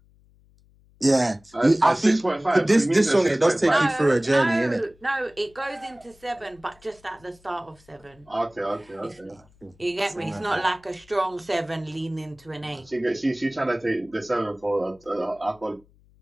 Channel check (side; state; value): left; noise; hum, 30 dB below the sound